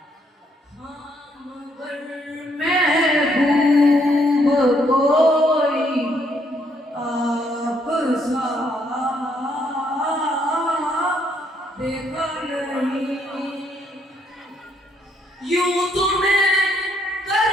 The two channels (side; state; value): both; normal; correlation 0.71